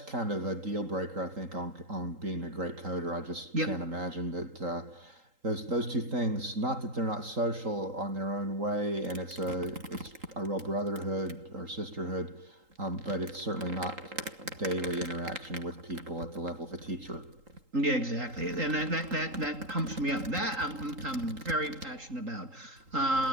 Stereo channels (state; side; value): late; left; 3.8 ms